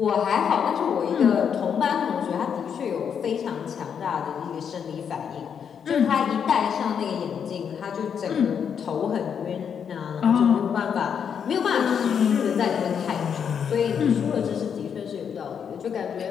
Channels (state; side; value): quieter; right; 7.5 dB